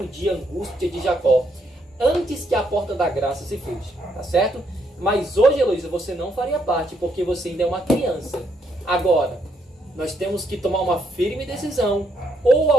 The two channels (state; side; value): normal; both; correlation 0.75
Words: de angústia de Jacó, antes que a porta da graça se feche, tá certo? Mas hoje, Heloísa, você não faria parte, porque você ainda é uma criança. Agora, nós temos que tomar uma firme decisão, ou